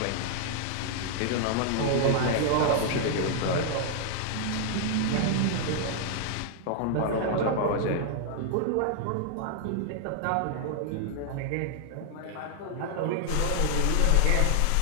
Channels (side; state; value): both; different; correlation 0.00